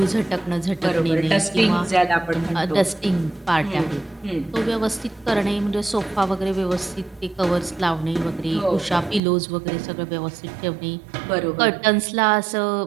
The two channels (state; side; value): drops out; left; at 9.2 s